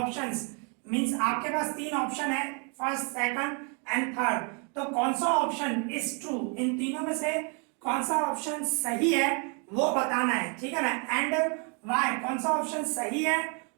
means आपके पास तीन ऑप्शन है, फर्स्ट, सेकंड एंड थर्ड। तो कौन सा ऑप्शन इज ट्रू, इन तीनों में से कौन सा ऑप्शन सही है वो बताना है, ठीक है ना। एंड वाई, कौन सा ऑप्शन सही है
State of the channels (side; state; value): left; quieter; 36.9 dB